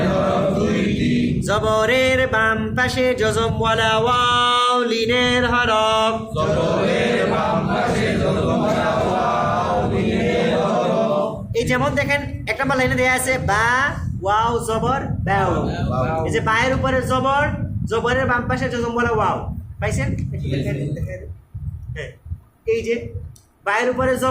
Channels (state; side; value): identical; both; correlation 1.00